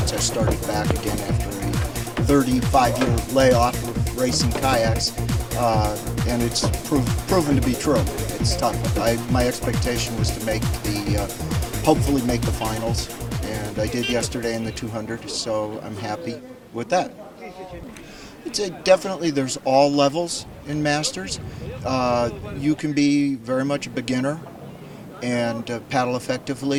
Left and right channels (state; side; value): identical; both; correlation 1.00